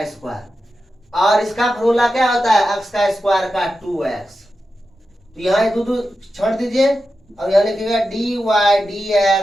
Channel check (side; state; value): both; normal; correlation 0.90